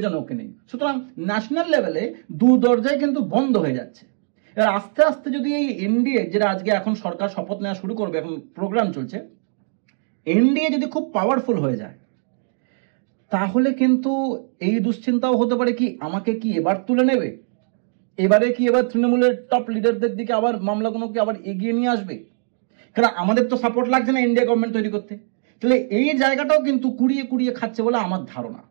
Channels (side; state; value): left; silent; digital silence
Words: ওকে নেই। সুতরাং ন্যাশনাল লেভেলে দু দরজায় কিন্তু বন্ধ হয়ে যাচ্ছে। এবার আস্তে আস্তে যদি এই এনডিএ, যেটা আজকে এখন সরকার শপথ নেওয়া শুরু করবে, এখন প্রোগ্রাম চলছে, এনডিএ যদি খুব পাওয়ারফুল হয়ে যায়, তাহলে কিন্তু এই দুশ্চিন্তাও হতে পারে কি আমাকে কি এবার তুলে নেবে, এবারে কি এবার তৃণমূলের টপ লিডারদের দিকে আবার মামলাগুলোকে আবার এগিয়ে নিয়ে আসবে। কারণ আমাদের তো সাপোর্ট লাগছে না ইন্ডিয়া গভর্নমেন্ট তৈরি করতে। তাহলে এই জায়গাটাও কিন্তু কুড়িয়ে কুড়িয়ে খাচ্ছে বলে আমার ধারণা।